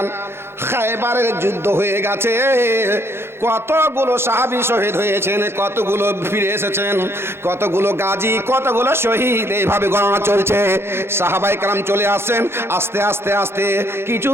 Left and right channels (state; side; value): late; left; 0.12 ms